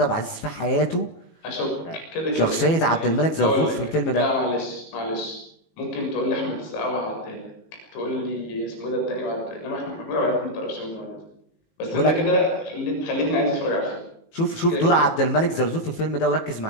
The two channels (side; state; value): right; late; 18 ms